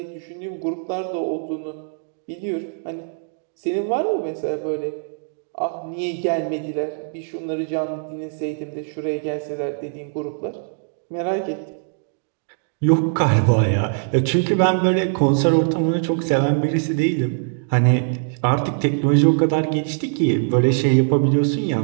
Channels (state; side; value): silent; left; 64 dB below the other